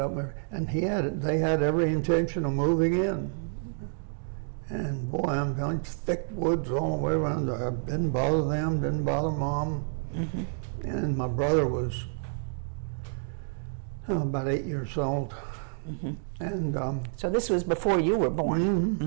And they had every intention of moving in. And boy, I'm telling you, thick woods all the way around there. Didn't bother them, didn't bother Mom. And my brother was about 8 years old. And So this was before you were born.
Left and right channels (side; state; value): left; silent; digital silence